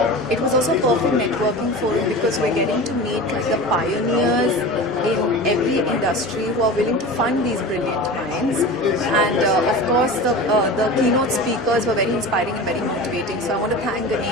it was also a perfect networking forum because we're getting to meet like the pioneers in every industry who are willing to fund these brilliant minds. And of course, the keynote speakers were very inspiring and very motivating. So I want to thank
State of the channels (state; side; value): normal; both; correlation 0.32